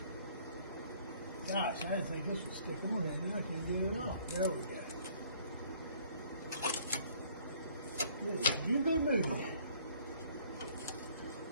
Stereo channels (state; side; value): inverted; both; correlation -0.59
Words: Gosh, I didn't think this would stick on there. Now I can get it off. There we go. Yeah, you good moving.